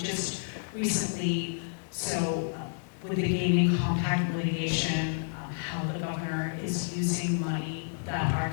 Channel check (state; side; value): silent; right; digital silence